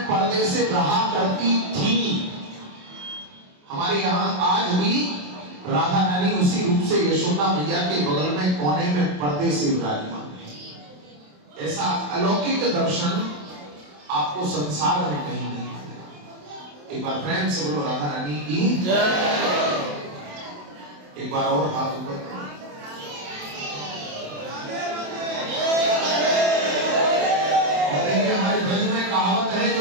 पर्दे से रहा करती थी, हमारे यहाँ आज भी राधा रानी उसी रूप से यशोदा मैया के बगल में कोने में पर्दे से विराजमान है। ऐसा अलौकिक दर्शन आपको संसार में कहीं नहीं। एक बार प्रेम से बोलो राधा रानी की जय। एक बार और हाथ ऊपर। और देखिए हमारे ब्रज में कहावत है,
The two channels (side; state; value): left; late; 27 ms